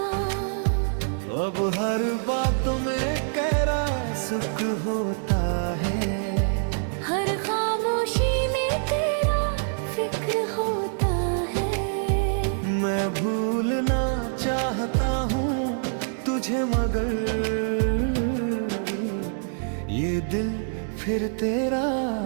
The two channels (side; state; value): left; silent; digital silence